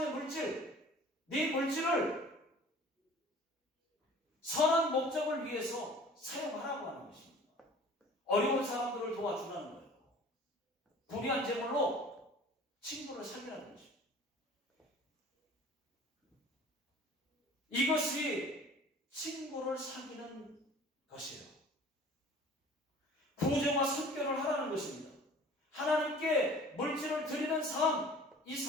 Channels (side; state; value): both; normal; correlation 0.46